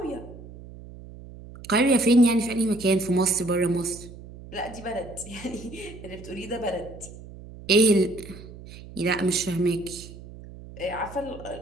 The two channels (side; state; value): right; noise; hum, 16 dB below the sound